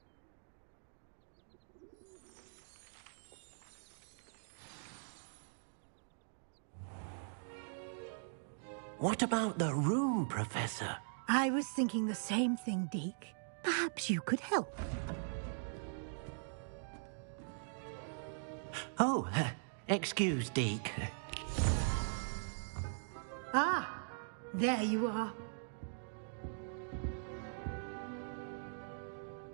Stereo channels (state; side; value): silent; left; digital silence